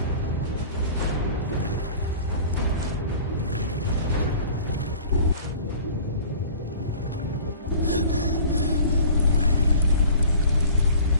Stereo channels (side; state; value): both; inverted; correlation -0.45